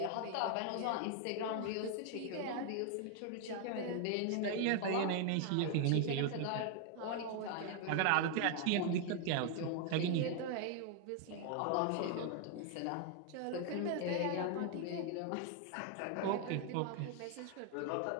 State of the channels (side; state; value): both; different; correlation 0.00